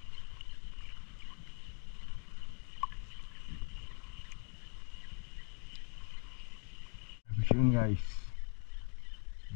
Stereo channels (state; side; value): quieter; right; 39.6 dB